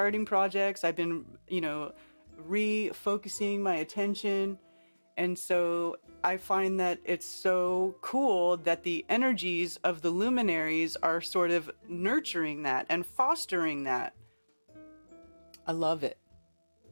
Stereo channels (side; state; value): both; inverted; correlation -1.00